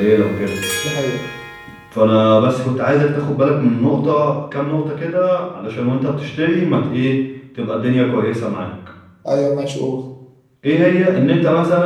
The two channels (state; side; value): identical; both; correlation 1.00